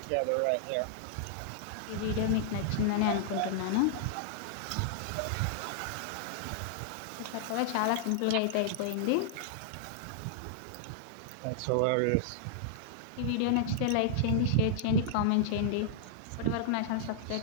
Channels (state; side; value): different; both; correlation -0.01